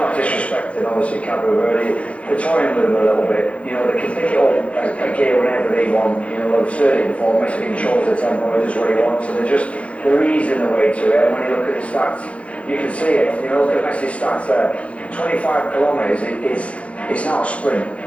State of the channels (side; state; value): right; late; 0.063 ms